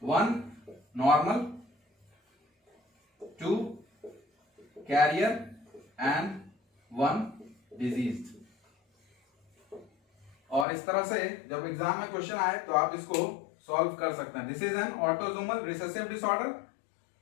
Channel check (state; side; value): drops out; right; at 10.7 s